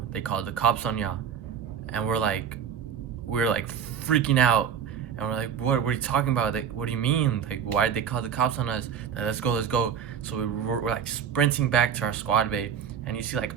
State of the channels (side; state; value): left; quieter; 8.0 dB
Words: They called the cops on y'all." And we're like freaking out. And we're like, what are you talking about? Like, what do you mean? Like, why did they call the cops on us? Like, let's go. So we're like sprinting back to our squad bay. And you see like